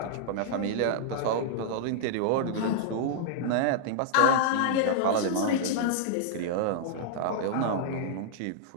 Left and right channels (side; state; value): both; different; correlation -0.01